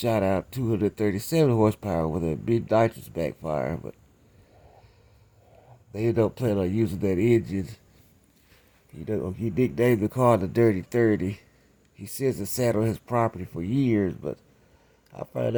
out 237 horsepower with a mid nitrous backfire. But they ended up planning on using that engine. He nicknamed the car the Dirty 30. He says it sat on his property for years, but I find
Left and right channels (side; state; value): both; identical; correlation 1.00